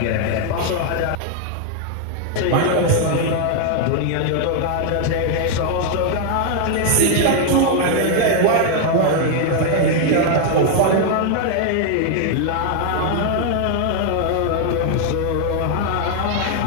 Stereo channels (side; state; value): both; different; correlation 0.00